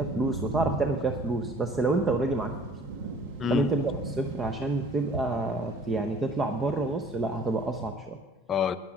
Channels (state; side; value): normal; both; correlation 0.52